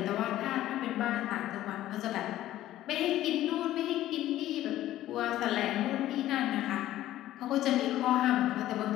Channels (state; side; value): quieter; right; 14.0 dB